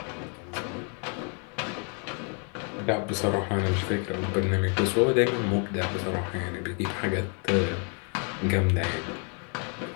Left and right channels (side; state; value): right; quieter; 39.5 dB